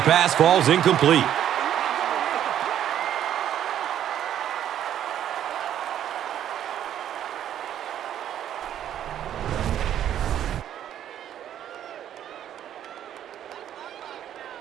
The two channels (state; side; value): quieter; left; 10.6 dB